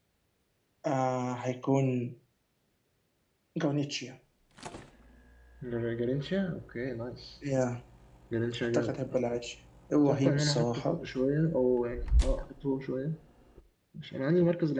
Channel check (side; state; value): both; identical; correlation 1.00